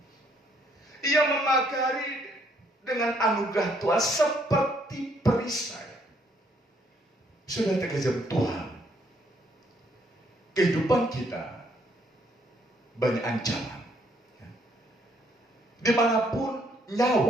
Ia memagari dengan anugerah Tuhan seperti perisai. Sudah terkejam Tuhan. Kehidupan kita banyak ancaman. Dimanapun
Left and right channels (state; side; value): normal; both; correlation 0.68